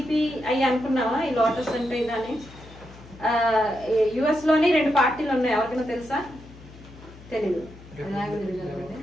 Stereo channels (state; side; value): noise; left; hum, 19 dB below the sound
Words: అవి అనుకున్నావా, ఈ లోటస్ అంటే ఇదని. యుఎస్ లోని 2 పార్టీలు ఉన్నాయి, ఎవరికైనా తెలుసా? తెలీదు.